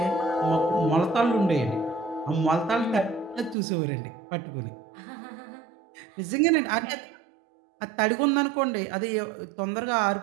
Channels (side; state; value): left; drops out; at 3.6 s